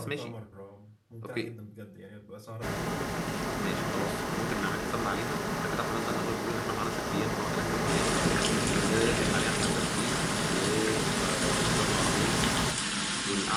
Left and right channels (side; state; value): both; identical; correlation 1.00